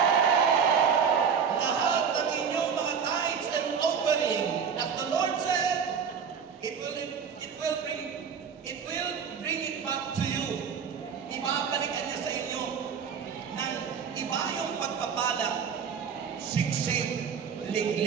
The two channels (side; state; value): left; quieter; 6.7 dB